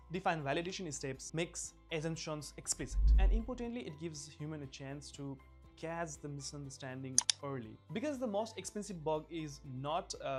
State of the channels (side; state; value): both; identical; correlation 1.00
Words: define validation steps, makes assumptions explicit. And importantly, it gives human a chance to catch the misunderstanding early. Because the most expensive bug is not